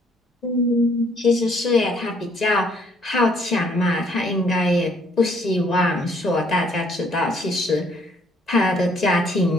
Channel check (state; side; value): normal; both; correlation 0.65